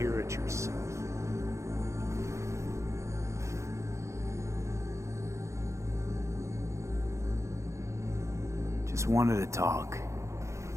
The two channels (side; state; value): left; late; 0.14 ms